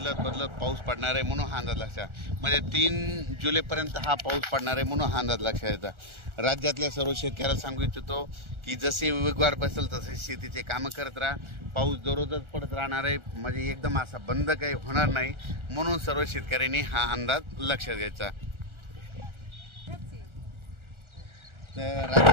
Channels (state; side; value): late; left; 1.4 ms